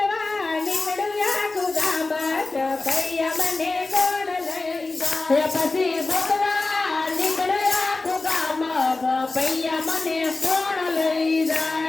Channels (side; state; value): right; quieter; 3.4 dB